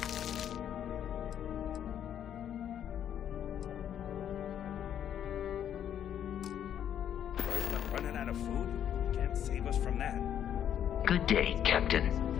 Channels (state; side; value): quieter; right; 9.7 dB